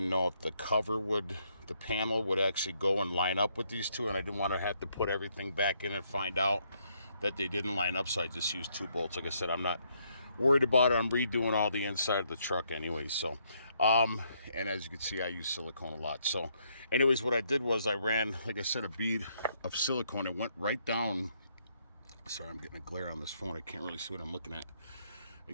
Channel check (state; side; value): inverted; both; correlation -0.73